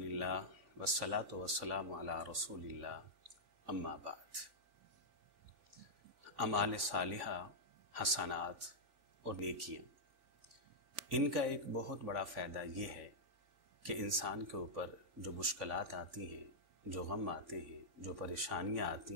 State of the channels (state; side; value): late; left; 3.5 ms